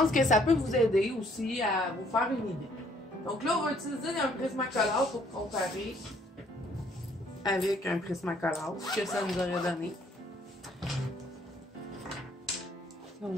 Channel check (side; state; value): both; normal; correlation 0.64